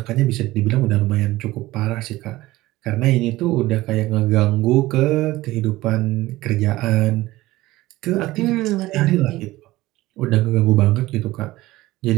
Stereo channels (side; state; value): left; quieter; 17.7 dB